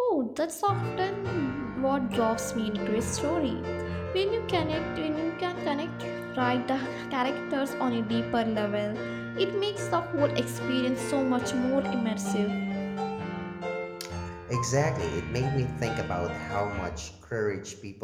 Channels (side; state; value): both; identical; correlation 1.00